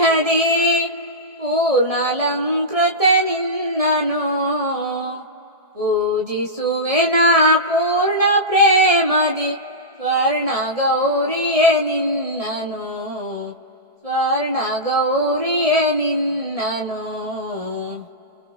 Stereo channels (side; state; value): left; late; 1.7 ms